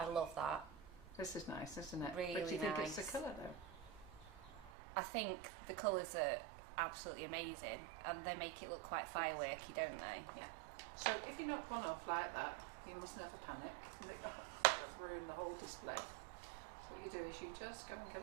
love that. This is nice, isn't it? Really but do you think it's nice. the colour though? I think the colours are absolutely amazing and they make it look quite fireworky, don't they? Yeah. So if you knock one off like that, you must never panic. You think, oh, that'll ruin the whole display. So what you do is you just go and get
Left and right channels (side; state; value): left; drops out; at 4.7 s